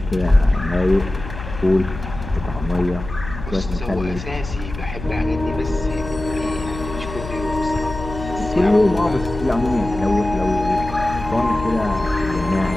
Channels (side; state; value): left; noise; hum, 10 dB below the sound